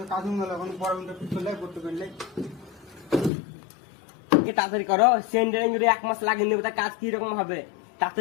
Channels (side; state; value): right; drops out; at 3.3 s